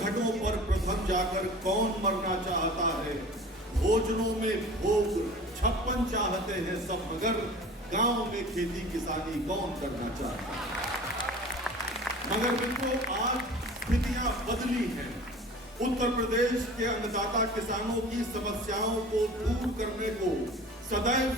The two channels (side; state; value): both; normal; correlation 0.41